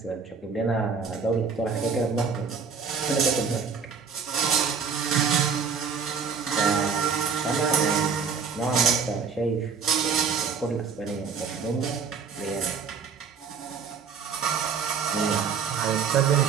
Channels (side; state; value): left; quieter; 5.9 dB